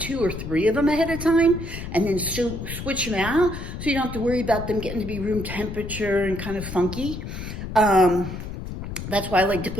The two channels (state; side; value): noise; left; rumble, 8 dB below the sound